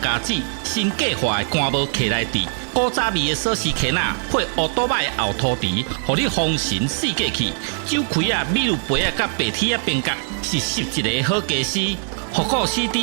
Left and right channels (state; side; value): silent; left; digital silence